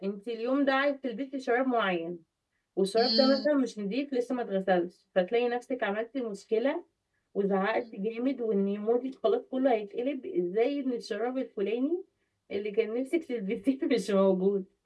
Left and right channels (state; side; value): identical; both; correlation 1.00